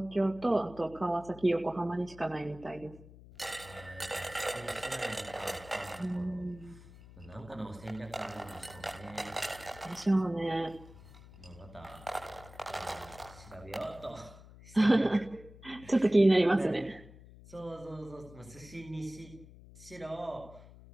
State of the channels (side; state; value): left; noise; hum, 19 dB below the sound